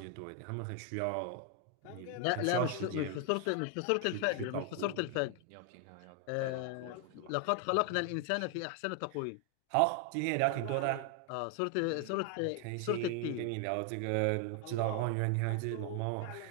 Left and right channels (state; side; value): different; both; correlation 0.00